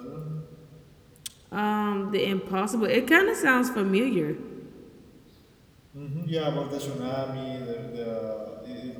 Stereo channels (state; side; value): identical; both; correlation 1.00